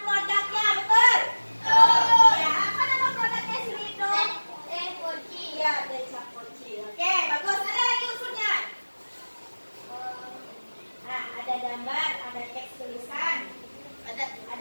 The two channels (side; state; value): both; inverted; correlation -1.00